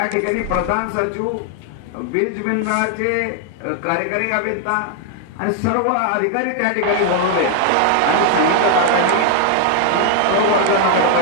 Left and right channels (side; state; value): both; different; correlation 0.00